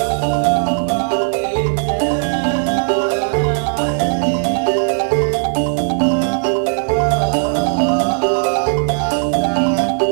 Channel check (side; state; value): left; silent; digital silence